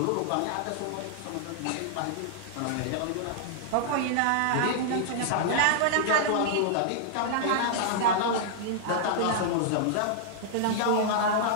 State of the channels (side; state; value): both; different; correlation -0.01